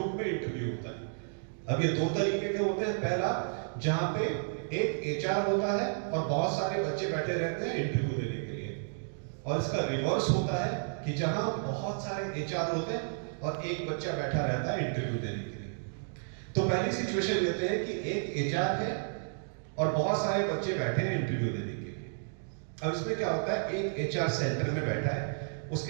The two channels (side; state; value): left; silent; digital silence